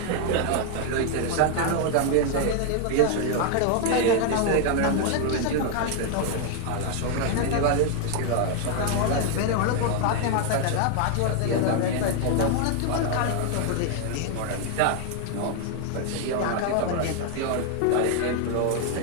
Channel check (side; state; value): both; different; correlation 0.00